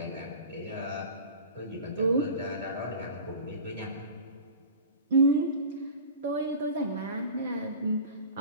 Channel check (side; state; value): both; inverted; correlation -0.37